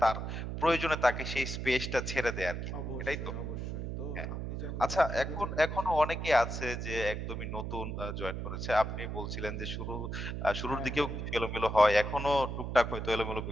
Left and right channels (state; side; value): noise; right; hum, 5 dB below the sound